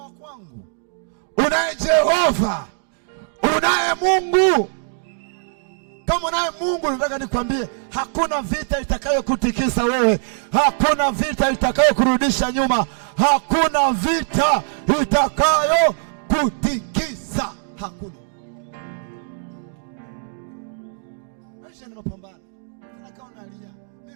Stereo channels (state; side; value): silent; left; 65 dB below the other